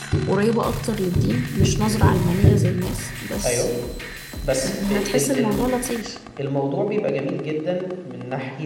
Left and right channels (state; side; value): identical; both; correlation 1.00